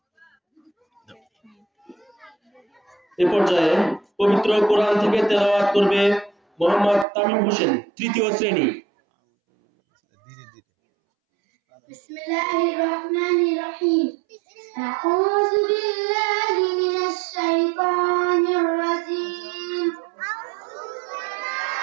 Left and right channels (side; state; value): left; drops out; at 7.1 s